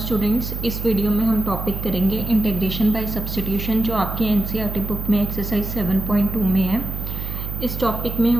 इस video में हम टॉपिक करेंगे इंटीग्रेशन बाय सब्स्टिट्यूशन जो आपकी एनसीईआरटी बुक में एक्सरसाइज 7.2 में है। इस टॉपिक में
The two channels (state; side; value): noise; right; hum, 6 dB below the sound